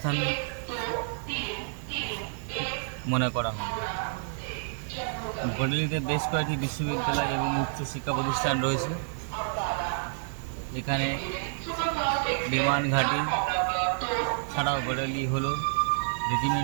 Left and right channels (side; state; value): left; silent; 57 dB below the other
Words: মনে করা হয়। বারেলিতে বেশ কয়েকটি বিশ্ববিদ্যালয় এবং উচ্চ শিক্ষা প্রতিষ্ঠান রয়েছে। এখানে বিমান ঘাঁটি ছাড়াও বারেলি হলো